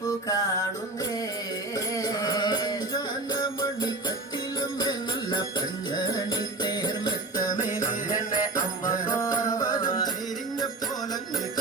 കാണുന്നേ മണി കട്ടിലുമേ നല്ല പഞ്ഞാണി തേർമത്തമേ അമ്പതും ചെരിഞ്ഞ പോലങ്ങ്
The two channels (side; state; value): left; quieter; 3.1 dB